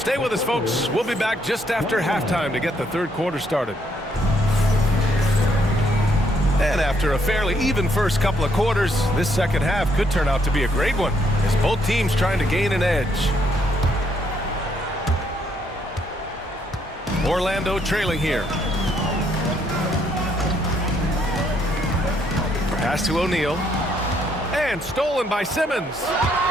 with us, folks. We'll be back just after halftime to get the third quarter started. And after a fairly even first couple of quarters, this second half could turn out to be a great one as both teams trying to gain an edge. Orlando trailing here. Pass to O'Neal. And stolen by Simmons.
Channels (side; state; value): both; normal; correlation 0.71